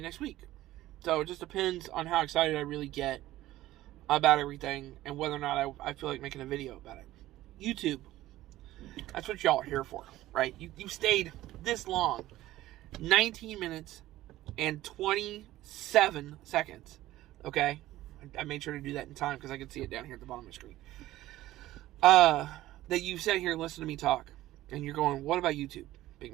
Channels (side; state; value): left; quieter; 15.5 dB